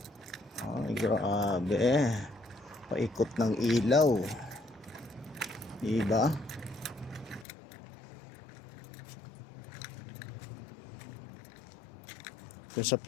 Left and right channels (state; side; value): drops out; right; at 7.5 s